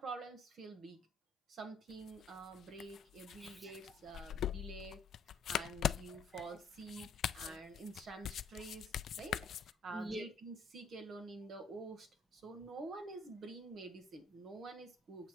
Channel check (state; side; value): quieter; right; 3.9 dB